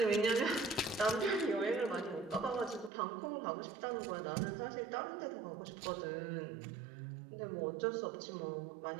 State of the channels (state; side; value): drops out; left; at 2.9 s